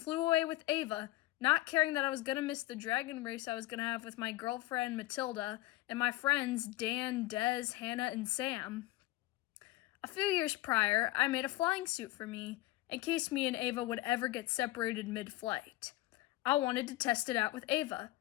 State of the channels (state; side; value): quieter; right; 17.6 dB